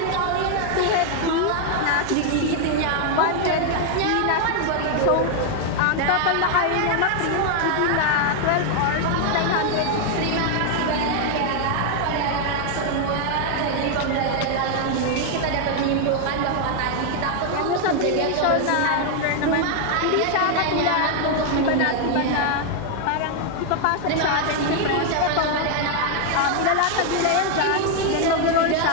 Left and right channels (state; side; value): different; both; correlation 0.00